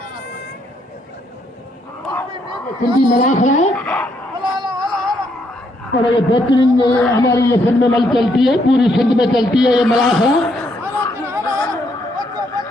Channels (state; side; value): normal; both; correlation 0.73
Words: सिंधी मलाखड़ा है और ये बेहतरीन हमारी ये सिंध में मल चलती है पूरी सिंध में चलती है ये मलाखड़ा